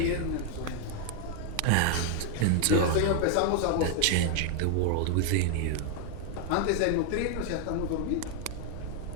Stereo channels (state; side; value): different; both; correlation 0.00